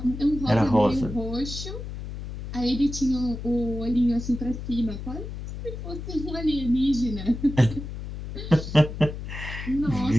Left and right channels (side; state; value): left; noise; hum, 8 dB below the sound